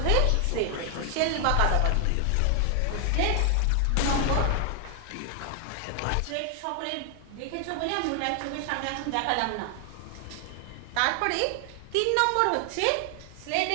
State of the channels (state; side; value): different; both; correlation 0.00